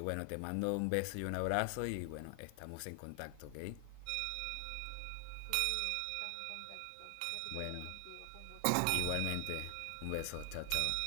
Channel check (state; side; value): different; both; correlation 0.00